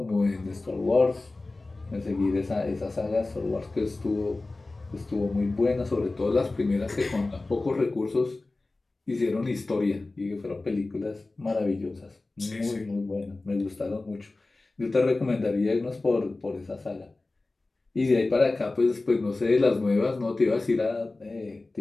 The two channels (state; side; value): quieter; right; 3.2 dB